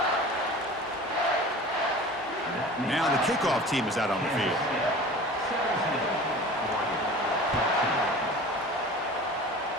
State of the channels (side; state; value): both; normal; correlation 0.39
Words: Now the kickoff team is out on the field.